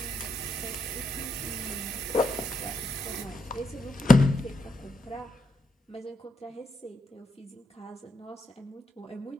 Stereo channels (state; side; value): normal; both; correlation 0.80